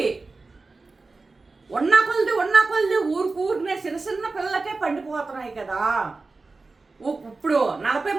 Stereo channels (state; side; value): quieter; left; 3.7 dB